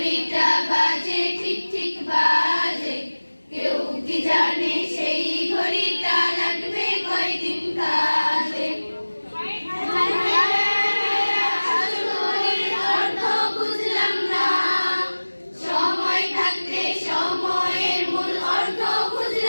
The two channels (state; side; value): inverted; both; correlation -1.00